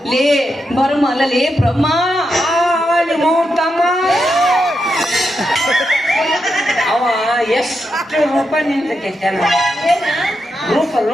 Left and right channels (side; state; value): both; normal; correlation 0.85